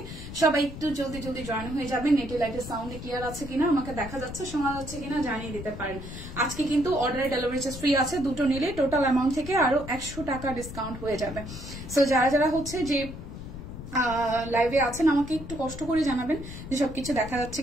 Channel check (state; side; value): noise; left; rumble, 11 dB below the sound